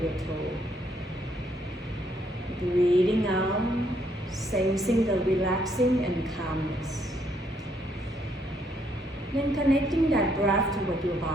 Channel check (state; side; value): normal; both; correlation 0.71